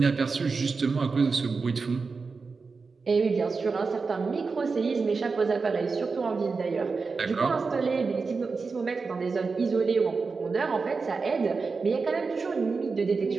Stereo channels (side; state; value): left; quieter; 4.6 dB